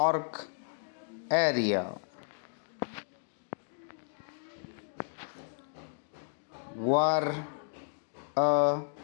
area were a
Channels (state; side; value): silent; right; digital silence